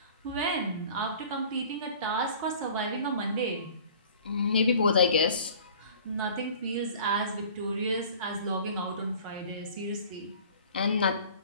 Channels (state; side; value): inverted; both; correlation -0.46